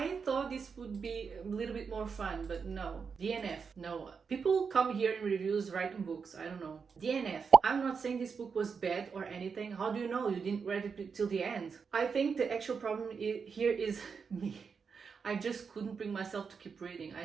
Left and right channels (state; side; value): quieter; left; 5.8 dB